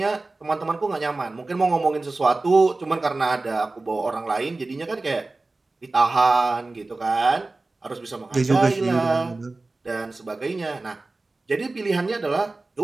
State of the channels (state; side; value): quieter; left; 3.3 dB